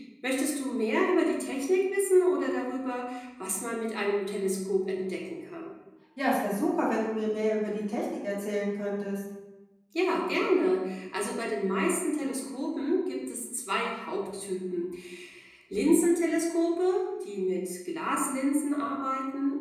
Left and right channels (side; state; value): both; identical; correlation 1.00